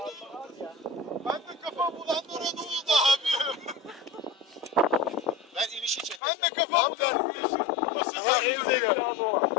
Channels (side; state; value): right; drops out; at 6.2 s